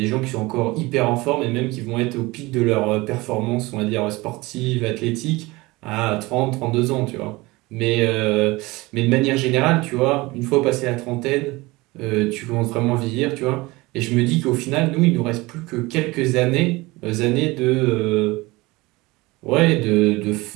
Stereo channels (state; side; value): quieter; left; 21.9 dB